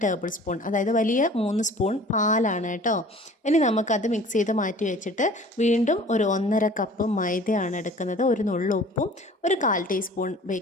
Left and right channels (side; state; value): both; normal; correlation 0.47